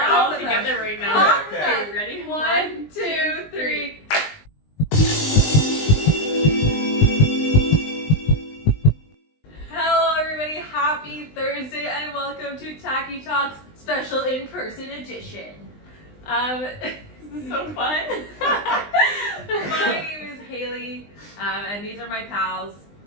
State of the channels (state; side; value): late; right; 20 ms